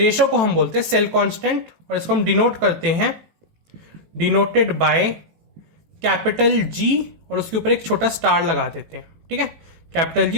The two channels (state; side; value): late; left; 19 ms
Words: को हम बोलते हैं सेल कांस्टेंट। और इसको हम डिनोट करते हैं डिनोटेड बाय कैपिटल G और उसके ऊपर एक छोटा स्टार लगा देते हैं। ठीक है, कैपिटल